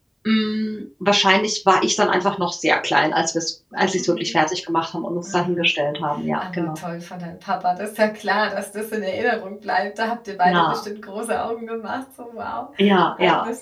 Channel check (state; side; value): identical; both; correlation 1.00